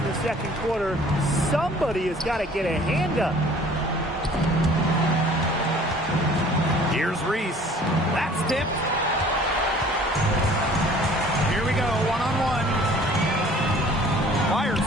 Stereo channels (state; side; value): normal; both; correlation 0.51